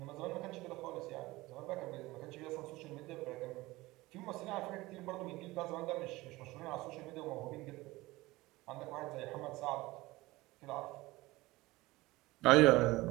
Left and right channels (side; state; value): left; quieter; 19.9 dB